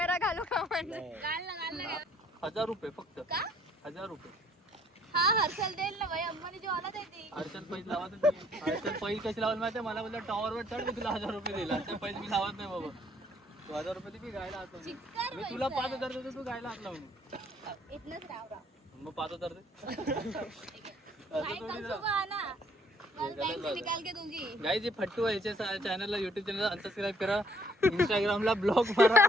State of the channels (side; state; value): both; normal; correlation 0.63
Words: घालू का म्हणजे? घाल ना. 1000 रुपये फक्त. का? 1000 रुपये. हा हर्षल देईल ना भाई, अंबानी जेवणात आहे ती. हर्षल पैसे लावत नाही. हर्षल पैसे कशी लावत माहितीये? मला बोलला टॉवरवर चढ, मी तुला 1000 रुपये दिला. हर्षल पैसे मी लावत नाही बाबा. तू 1000 रुपये दे, मी गायला हात लावून. चिक्कार मी तुला 5000 देतो, तू गायला हात लावून. इथनच राव. मग 5000 दे. काय कल सुबह ना. कल बैंक से निकाल के दूंगी. गाइस, ये फट्टू आहे. याच्या चॅनलला, युट्यूब चॅनलला अनसबस्क्राईब करा, इंस्टाग्रामला ब्लॉग मारा